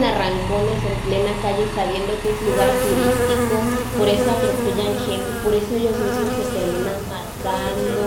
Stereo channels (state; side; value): identical; both; correlation 1.00